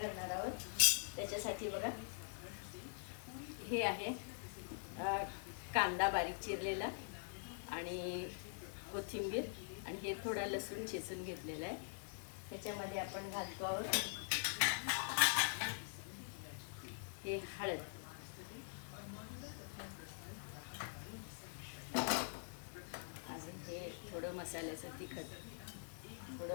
आहोत. त्याच्यासाठी बघा, हे आहे कांदा बारीक चिरलेला आणि कोथिंबीर, आणि हे थोडा लसूण चेचून घेतलेला आहे. ह्याच्यामध्ये आपण घालतो आहोत हे हळद, अजून हे थोडं मसाल्याचं तिखट,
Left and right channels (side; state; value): right; silent; digital silence